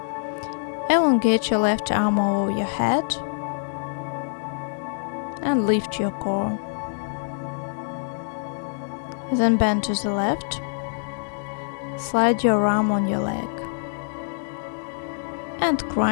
Elongate your left arm over your head and lift your core. Then bend to the left. Slide your arm on your leg. And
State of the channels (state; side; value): silent; right; 62 dB below the other